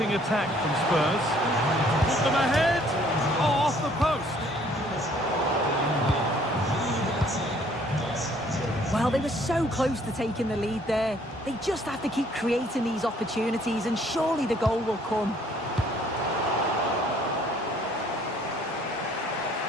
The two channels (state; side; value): normal; both; correlation 0.61